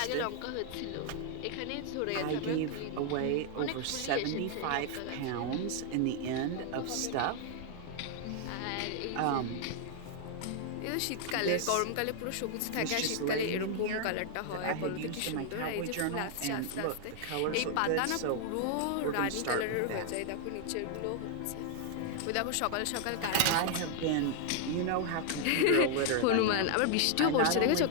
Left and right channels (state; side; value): different; both; correlation 0.00